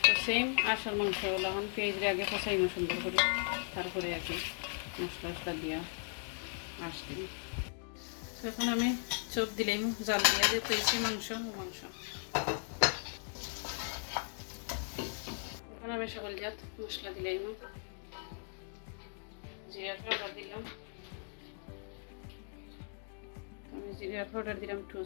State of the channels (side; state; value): right; silent; 53 dB below the other